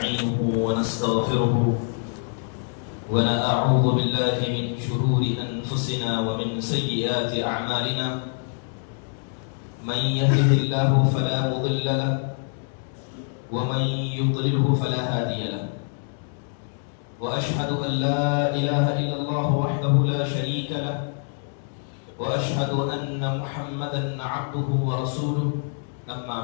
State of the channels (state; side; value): silent; right; digital silence